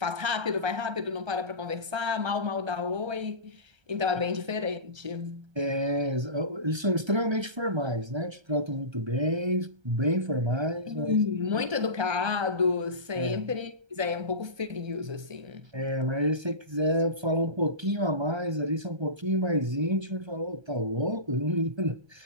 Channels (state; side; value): late; left; 1.3 ms